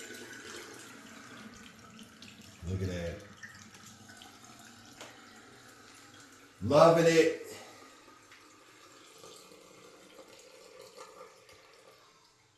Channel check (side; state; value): both; identical; correlation 1.00